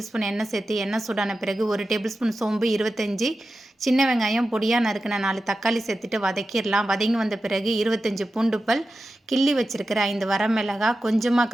ஸ்பூன் எண்ணெய் சேர்த்து, எண்ணெய் சூடான பிறகு 1 டேபிள் ஸ்பூன் சோம்பு, 25 சின்ன வெங்காயம், பொடியா நறுக்குன 4 தக்காளி சேர்த்துட்டு வதக்கிடலாம். வதங்கி வந்த பிறகு 25 பூண்டு பல், கிள்ளி வச்சிருக்கிற 5 வரமிளகாய், கொஞ்சமா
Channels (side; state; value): both; normal; correlation 0.92